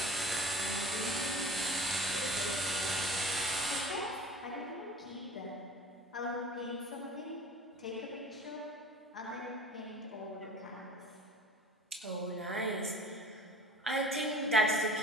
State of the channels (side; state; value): both; normal; correlation 0.44